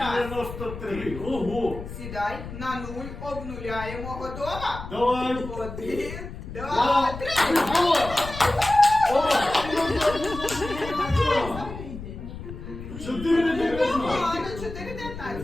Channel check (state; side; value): noise; left; rumble, 11 dB below the sound